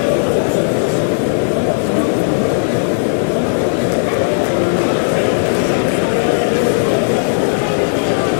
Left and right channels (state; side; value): silent; right; 65 dB below the other